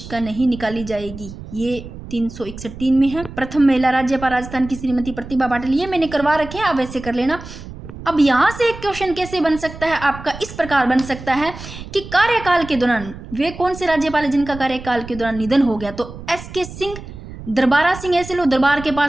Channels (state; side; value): noise; right; rumble, 13 dB below the sound